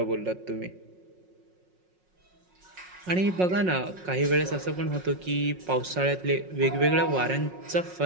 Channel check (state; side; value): late; left; 5.5 ms